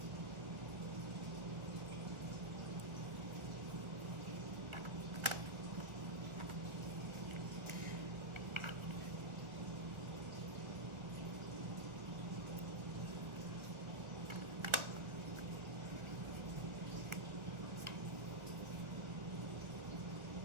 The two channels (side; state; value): left; late; 1.3 ms